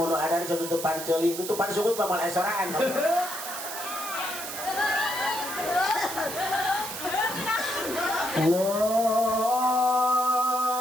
ada di tutupan ceuling, tutupan sungguh pamal esoraan. Allahu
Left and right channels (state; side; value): noise; right; hiss, 7 dB below the sound